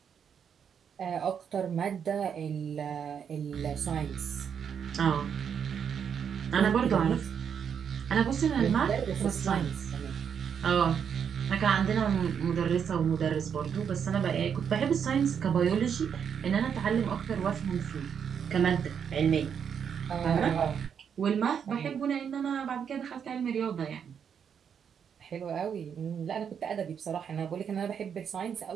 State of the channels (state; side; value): quieter; left; 7.6 dB